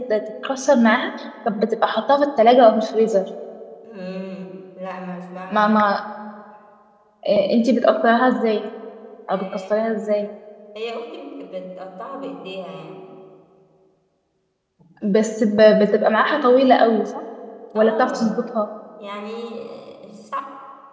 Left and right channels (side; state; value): both; identical; correlation 1.00